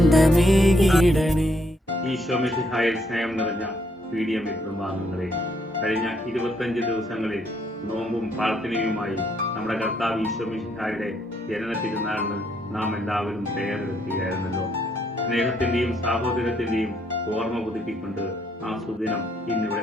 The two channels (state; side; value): normal; both; correlation 0.72